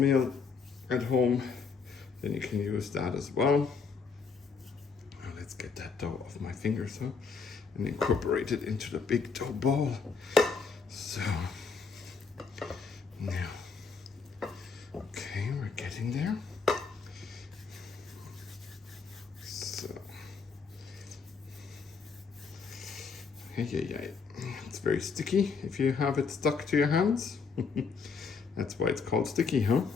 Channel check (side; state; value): right; quieter; 5.2 dB